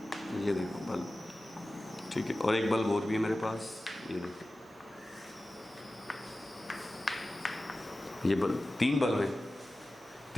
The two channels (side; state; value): both; normal; correlation 0.96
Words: ये देखो बल्ब, ठीक है। और एक बल्ब और भी है मेरे पास, ये देखो, ये बल्ब, 3 बल्ब है।